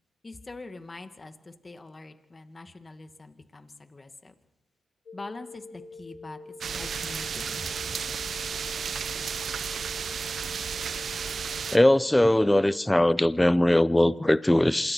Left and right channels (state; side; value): normal; both; correlation 0.97